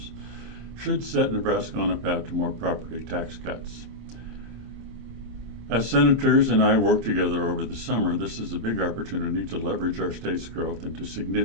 should set Nebraska on a path to more property tax cuts. As senators and I work together over the summer, this is a big opportunity to leverage our state's growth into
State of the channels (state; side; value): late; left; 26 ms